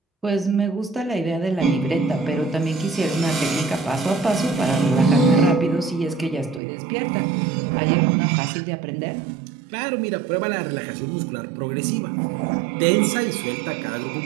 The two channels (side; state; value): left; drops out; at 6.6 s